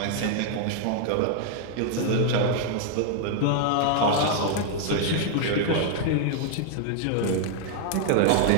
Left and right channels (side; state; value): both; different; correlation 0.00